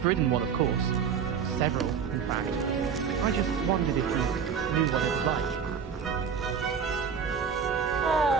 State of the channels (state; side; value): quieter; left; 7.0 dB